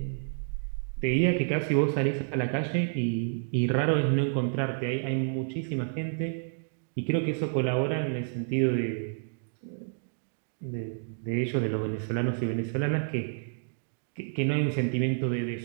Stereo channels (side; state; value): left; silent; digital silence